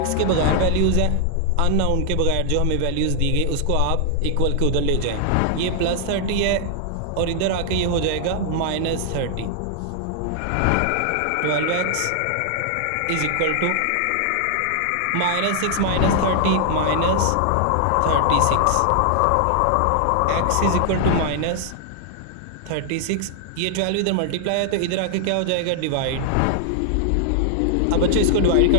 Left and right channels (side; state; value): both; different; correlation -0.01